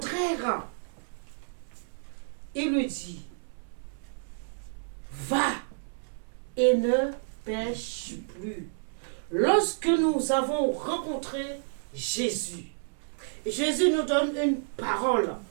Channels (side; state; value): left; silent; 58 dB below the other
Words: il lui dit, va et ne pêche plus. Lorsque nous avons rencontré Jésus, Jésus nous donne une parole.